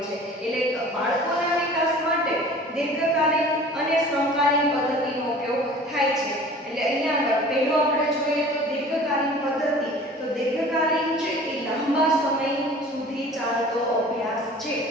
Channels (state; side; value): normal; both; correlation 0.45